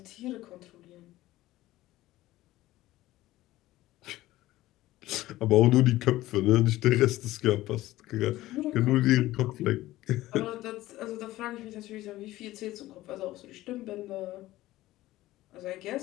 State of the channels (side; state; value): right; quieter; 16.4 dB